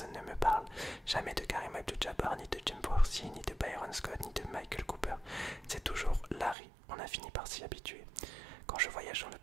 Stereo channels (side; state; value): left; drops out; at 6.6 s